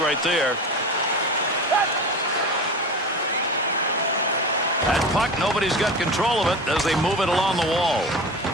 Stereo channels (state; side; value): normal; both; correlation 0.30